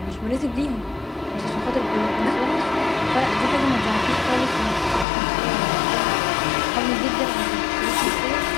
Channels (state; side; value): drops out; right; at 5.1 s